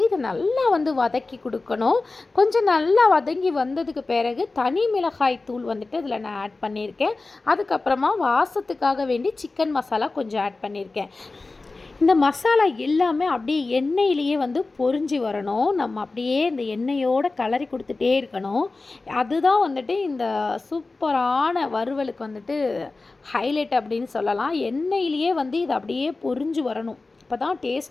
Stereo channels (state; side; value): quieter; right; 3.5 dB